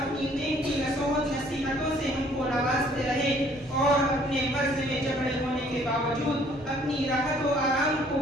قیمتی نصیحت نصیحتوں سے ہم کو نوازتے رہے اور اپنے مرض میں جبڑے ہونے کے باوجود اپنی راحت و آرام کو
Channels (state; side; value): normal; both; correlation 0.60